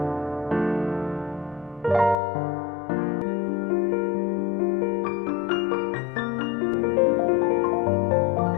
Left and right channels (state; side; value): drops out; right; at 2.1 s